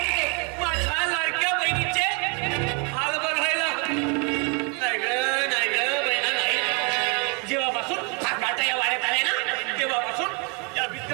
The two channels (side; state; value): left; quieter; 33.6 dB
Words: ते? माझ्या लाडक्या बहिणीचे हाल बघायला. नाही ग बहिणा नाही. जेव्हापासून काटा या वाड्यात आले ना, तेव्हापासून या